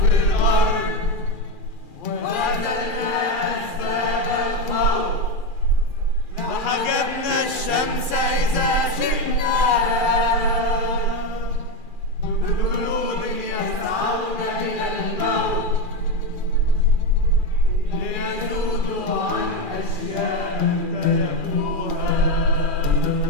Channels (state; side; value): late; right; 2.4 ms